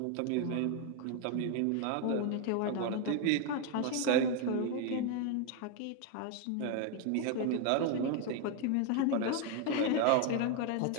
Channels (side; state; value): both; different; correlation 0.01